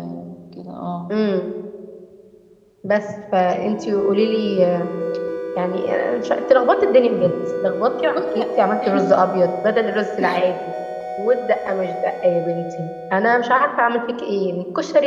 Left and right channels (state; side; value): identical; both; correlation 1.00